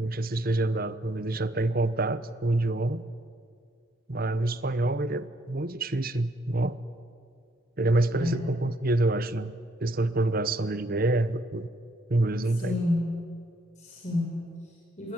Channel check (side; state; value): both; normal; correlation 0.70